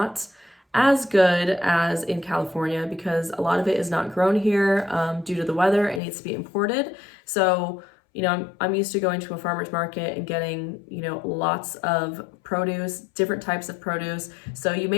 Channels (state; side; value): drops out; right; at 6.0 s